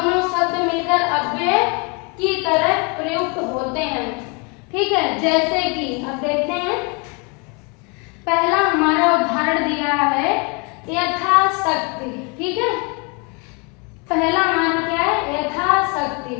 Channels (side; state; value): right; quieter; 32.5 dB